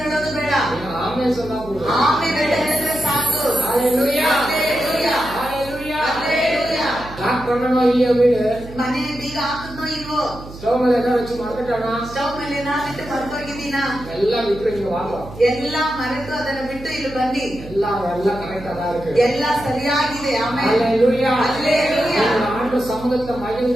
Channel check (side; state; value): right; noise; hum, 15 dB below the sound